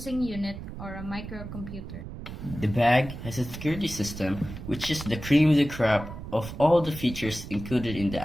unit or a microcomputer. The bag has a security system, which is the cream of the crop of all the features included in the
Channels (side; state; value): right; noise; rumble, 10 dB below the sound